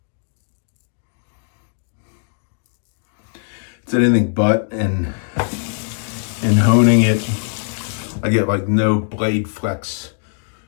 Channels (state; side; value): silent; right; digital silence